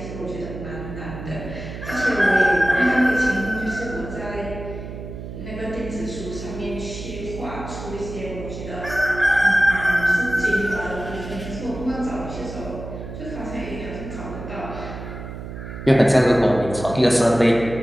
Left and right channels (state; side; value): noise; right; hum, 10 dB below the sound